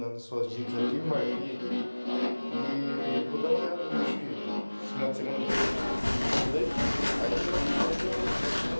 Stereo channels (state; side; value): inverted; both; correlation -1.00